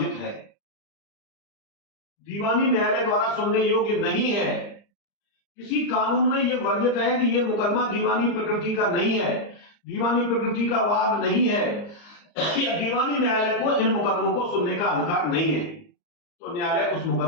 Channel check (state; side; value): late; right; 34 ms